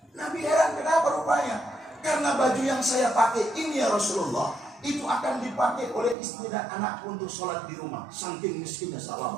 Nabi heran, kenapa rupanya? Karena baju yang saya pakai ini ya Rasulullah, itu akan dipakai oleh istri dan anak untuk sholat di rumah. Saking miskinnya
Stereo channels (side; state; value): left; drops out; at 6.2 s